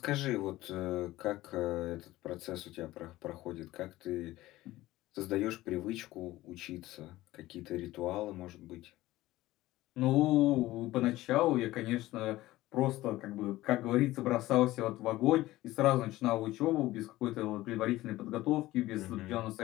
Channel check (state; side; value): quieter; right; 17.0 dB